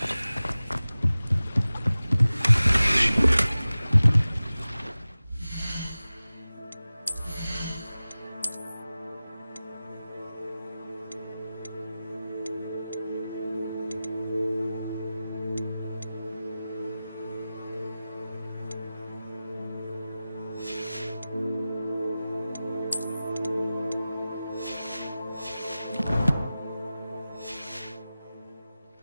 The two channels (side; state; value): both; inverted; correlation -0.96